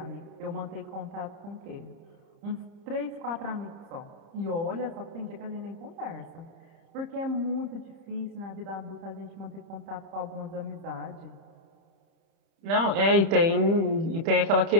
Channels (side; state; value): left; late; 30 ms